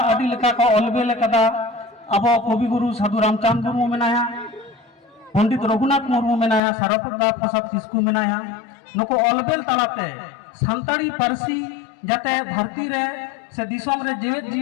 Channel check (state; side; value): drops out; right; at 6.6 s